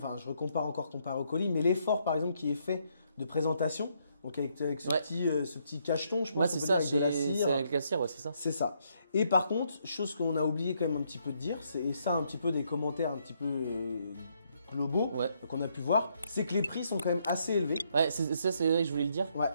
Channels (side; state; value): both; inverted; correlation -0.74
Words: je recompare encore comparé au colis, mais l'effort par exemple qui est fait de présentation, donc avec ce petit cacheton, je pense. Ouais, c'est ça, avec de la cire. C'est avec la cire, ouais, c'est ça. C'est ça. Et par contre, chose qu'on a oublié quand même un petit peu de dire, et ça un petit peu des commentaires un petit peu globaux qu'on a pu voir, c'est que les prix sont quand même assez élevés. Ouais, ça c'est vrai que je voulais le dire. Ouais.